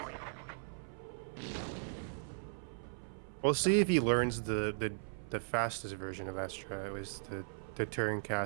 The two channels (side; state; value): left; silent; 53 dB below the other